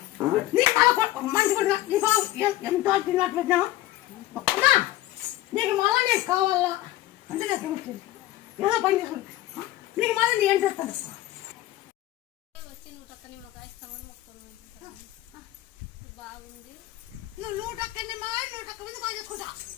నీకు మంచి కొడుకు నీ బాబు ఎంతో తిన్నట్టు పెట్టినావు నీకు మళ్ళా నీకు కావాలా అంటే నాకు ఏమొచ్చింది ఏదో పని చేసుకుంటా నీకు మళ్ళీ నీ ఏం చేస్తాను బాగుంది నువ్వు 100 నిమ్మకాయ 100 మంది బాగా చేసుకుంటా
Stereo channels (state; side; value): quieter; right; 15.9 dB